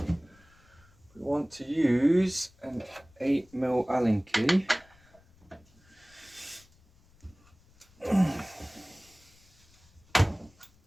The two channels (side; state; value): left; noise; rumble, 29 dB below the sound